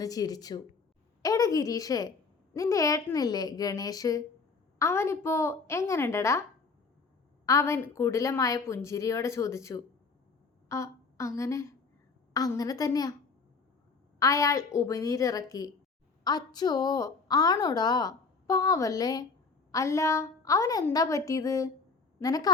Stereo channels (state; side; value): quieter; right; 4.5 dB